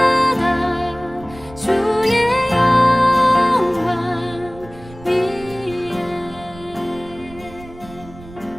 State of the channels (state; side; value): noise; right; rumble, 19 dB below the sound